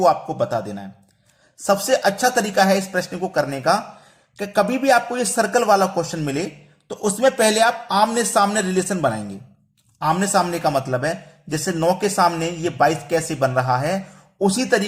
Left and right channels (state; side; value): identical; both; correlation 1.00